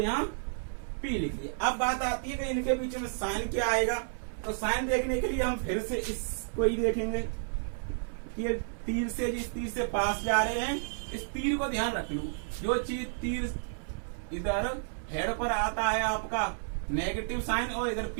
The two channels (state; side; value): silent; left; 57 dB below the other